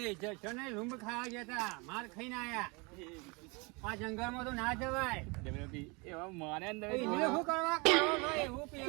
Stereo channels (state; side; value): quieter; left; 28.8 dB